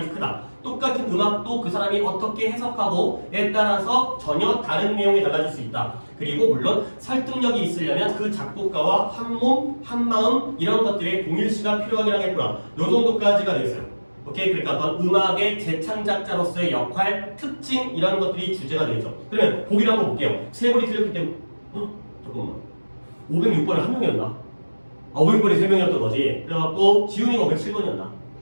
크다. 똑같은 음악도 그 사람이 어떻게 해석하고에 따라서 전혀 다른 내용이 달라질 수 있다. 그리고 물론 설득력이 있으려면 그 작곡가와 한 몸, 한 마음 이런 것들의 동일시가 필요하긴 하겠구나. 요 정도까지가 되겠어요. 오케이? 그러니까 어떤 음악의 재창작자로서의 역할, 특징 이런 것들이 주제가 되겠죠. 그러면 보기를 한번 볼게요. 세 번이 틀렸기 때문에 잠깐만 506번은 한 명이었나? 500번이 3명이었던 거지. 그래갖고 지훈이가 507번이었나?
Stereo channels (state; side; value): inverted; both; correlation -1.00